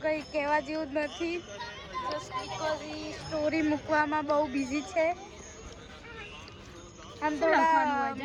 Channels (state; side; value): identical; both; correlation 1.00